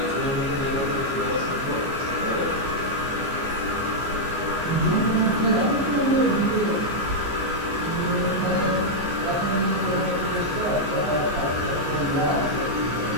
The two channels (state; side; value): late; left; 15 ms